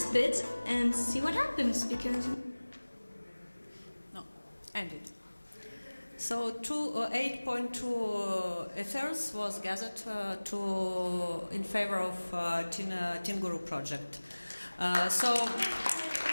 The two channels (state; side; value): inverted; both; correlation -1.00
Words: bit and see what happens, because... No, ended. So 8.2 ethers was gathered in favor of Teen Guru project.